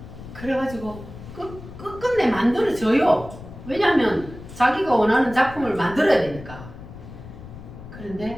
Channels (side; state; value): left; noise; rumble, 14 dB below the sound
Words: 그래가지고 끝끝내 만들어져요. 왜냐하면 자기가 원하는 작품을 만들어야 되니까.